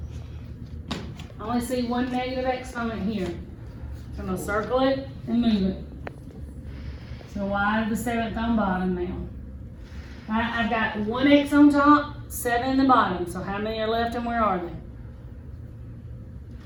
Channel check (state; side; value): identical; both; correlation 1.00